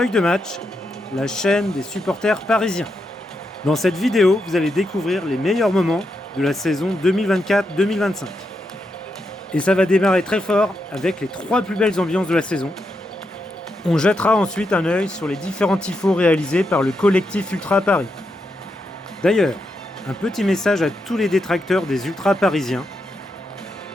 de match, la chaîne des supporters parisiens. Dans cette vidéo, vous allez découvrir les meilleurs moments de la saison 2024-2025. Et ça va démarrer très fort avec les 3 plus belles ambiances de la saison. On jettera ensuite un œil sur les différents tifos réalisés par le collectif Ultra Paris. D'ailleurs, un petit message à tous les détracteurs des ultras parisiens.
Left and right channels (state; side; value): normal; both; correlation 0.84